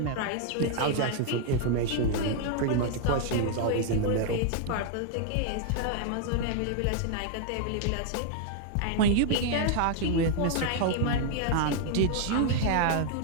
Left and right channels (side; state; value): both; different; correlation 0.00